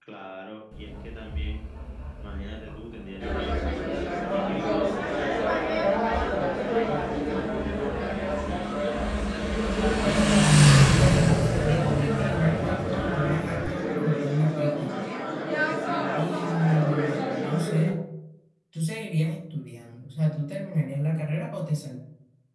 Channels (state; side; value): identical; both; correlation 1.00